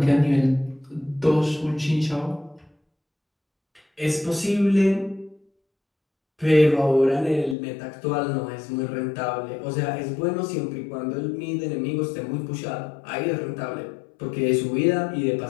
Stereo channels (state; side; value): drops out; right; at 7.6 s